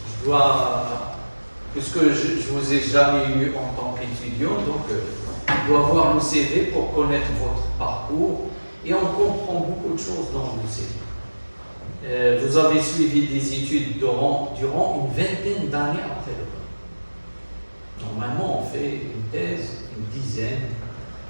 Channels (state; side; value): inverted; both; correlation -1.00